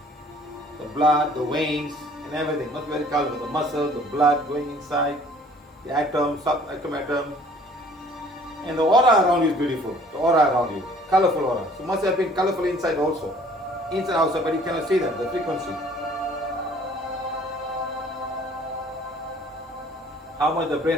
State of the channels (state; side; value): normal; both; correlation 0.55